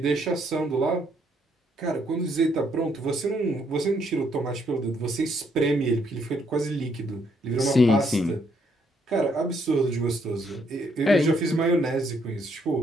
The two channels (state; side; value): normal; both; correlation 0.71